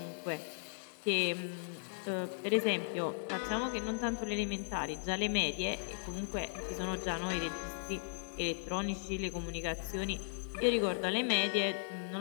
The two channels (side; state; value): right; silent; digital silence